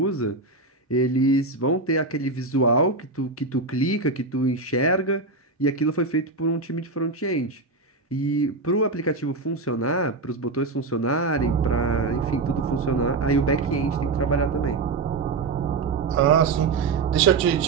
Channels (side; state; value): left; quieter; 3.7 dB